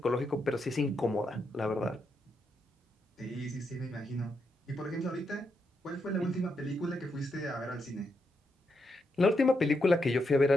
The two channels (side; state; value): both; normal; correlation 0.82